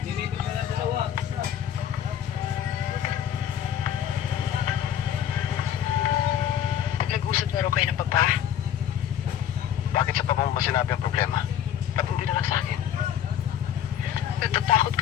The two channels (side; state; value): right; quieter; 9.9 dB